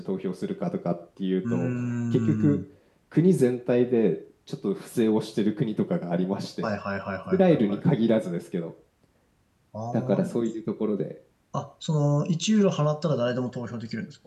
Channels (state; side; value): identical; both; correlation 1.00